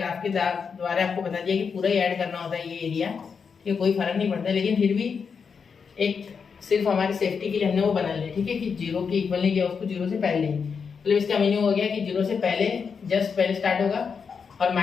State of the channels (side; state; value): right; quieter; 6.0 dB